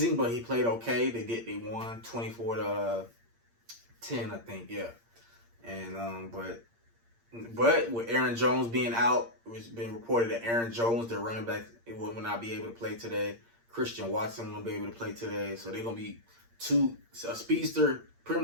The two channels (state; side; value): late; left; 8.7 ms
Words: but he played okay. They won 24-10, I think, yeah. And but with Aaron Jones being out, it's been reported that Aaron Jones, their running back, will not be able to play today. Christian Watson will be able to play today. So they're going to be a speedster, pretty